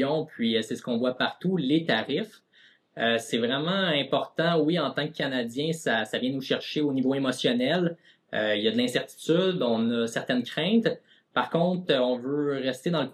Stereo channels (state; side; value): identical; both; correlation 1.00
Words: puis c'est ce qu'on voit partout, les tarifs. C'est vraiment important, oui, en tant que Canadien, ça vient nous chercher au niveau émotionnel. Il y a de l'incertitude, on a certaines craintes. Par contre, on veut rester dans le